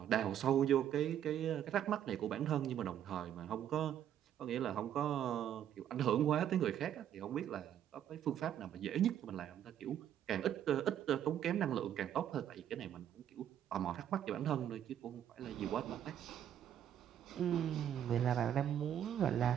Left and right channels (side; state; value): left; quieter; 10.2 dB